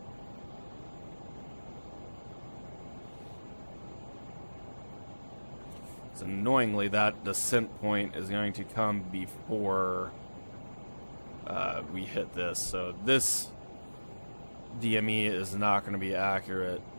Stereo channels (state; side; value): inverted; both; correlation -1.00